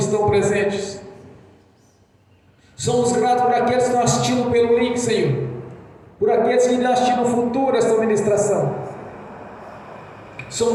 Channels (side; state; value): both; identical; correlation 1.00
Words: presentes. Somos gratos por aqueles que estão assistindo pelo link, Senhor, por aqueles que irão assistir no futuro esta ministração.